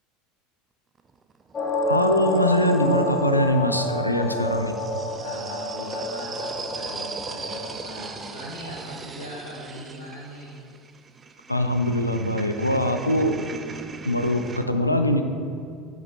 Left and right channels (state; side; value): inverted; both; correlation -0.32